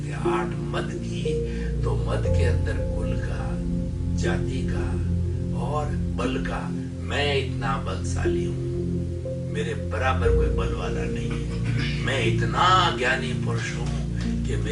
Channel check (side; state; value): both; identical; correlation 1.00